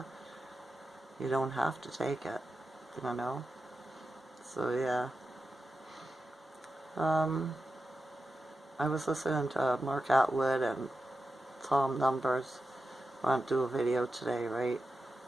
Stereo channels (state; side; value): normal; both; correlation 0.91